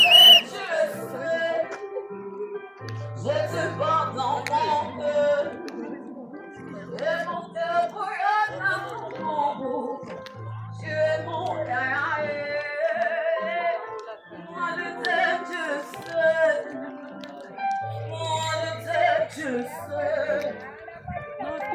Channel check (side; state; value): both; identical; correlation 1.00